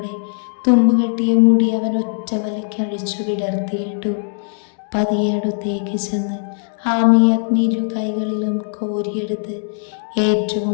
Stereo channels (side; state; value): right; silent; digital silence